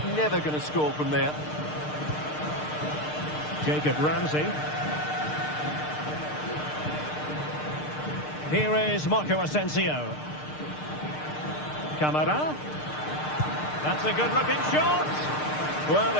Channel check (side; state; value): right; late; 6.6 ms